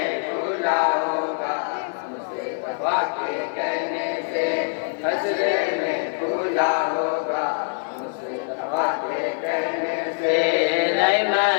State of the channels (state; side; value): silent; right; 63 dB below the other